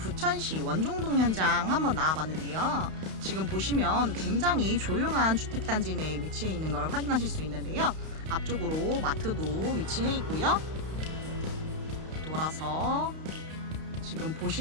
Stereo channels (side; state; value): left; late; 32 ms